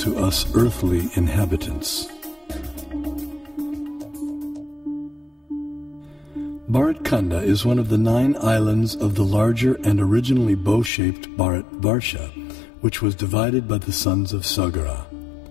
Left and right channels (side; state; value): right; drops out; at 10.9 s